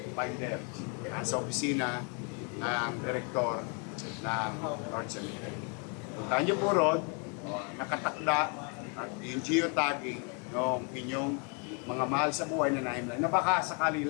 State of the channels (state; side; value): quieter; right; 36.4 dB